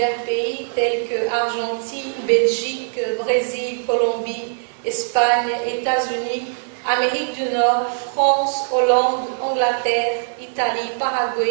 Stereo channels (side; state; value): left; silent; 65 dB below the other